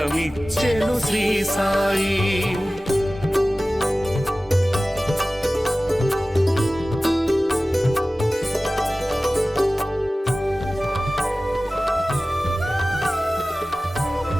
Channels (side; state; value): both; normal; correlation 0.97